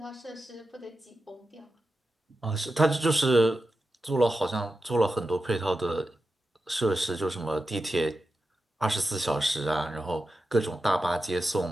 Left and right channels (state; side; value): normal; both; correlation 0.91